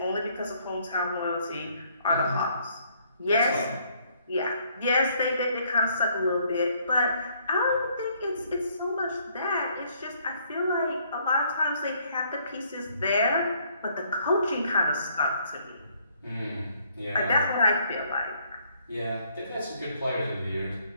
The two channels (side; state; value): both; inverted; correlation -0.66